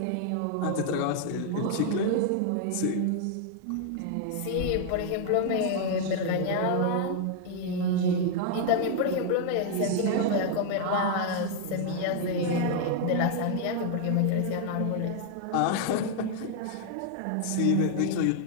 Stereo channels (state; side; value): different; both; correlation 0.00